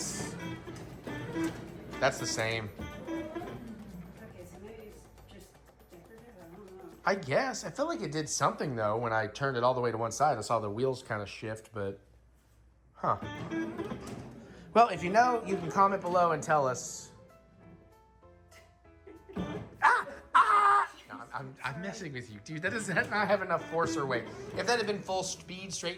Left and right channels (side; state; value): both; identical; correlation 1.00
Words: the same. Okay, so maybe it's just decorative. I don't know. I guess. I felt like it did something, though, when I turned it all the way to one side. I saw the wheels kind of shift, but... Huh. Well, if you know, you can comment below and tell us. No, I'm messing with you, dude. That does not have enough force or weight. If that had been full speed